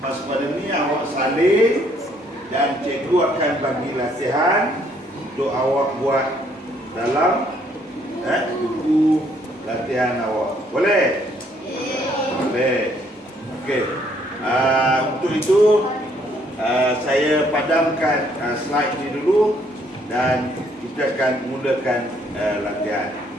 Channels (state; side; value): normal; both; correlation 0.67